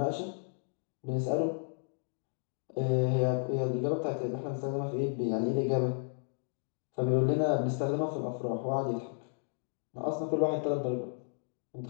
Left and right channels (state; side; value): silent; right; digital silence